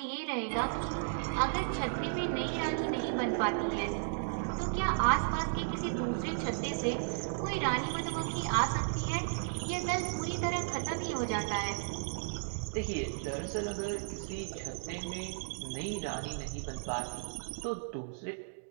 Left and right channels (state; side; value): silent; left; digital silence